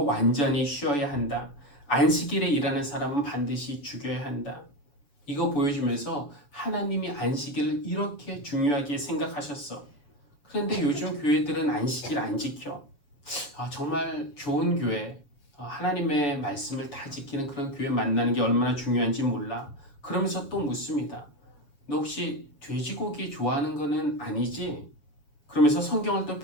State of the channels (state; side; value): late; right; 7.1 ms